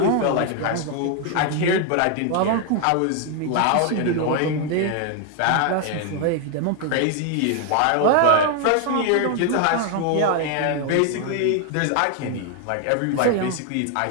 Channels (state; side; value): different; both; correlation 0.01